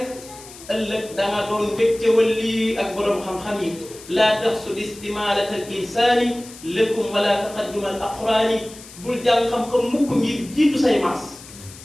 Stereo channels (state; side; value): noise; left; hiss, 18 dB below the sound